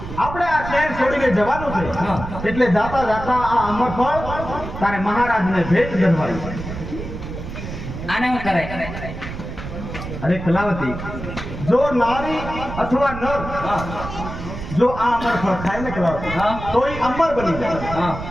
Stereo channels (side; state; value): right; noise; rumble, 9 dB below the sound